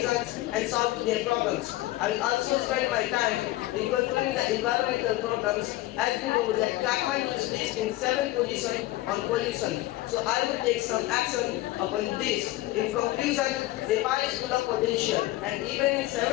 and solving their problems. I will also spend my time in controlling the environmental problems, as we know that Kathmandu is listed in 7th position on pollution. So I will take some action upon this. In conclusion, Nepal is full of potential, and even in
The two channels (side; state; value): right; quieter; 17.3 dB